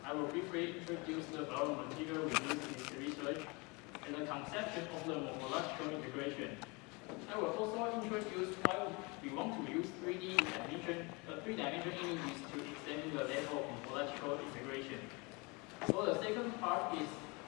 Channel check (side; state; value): right; quieter; 27.9 dB